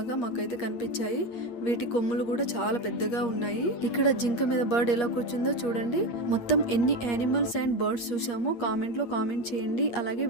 మాకైతే కనిపించాయి. వీటి కొమ్ములు కూడా చాలా పెద్దగా ఉన్నాయి. ఇక్కడ జింక మీద బర్డ్ ఎలా కూర్చుందో చూడండి. మొత్తం ఎన్ని యానిమల్స్ అండ్ బర్డ్స్ చూసామో కామెంట్ లో కామెంట్ చేయండి. అలాగే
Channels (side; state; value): right; late; 8.5 ms